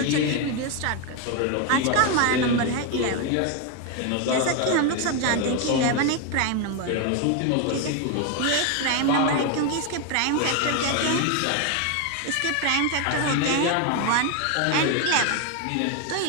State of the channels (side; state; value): both; different; correlation 0.01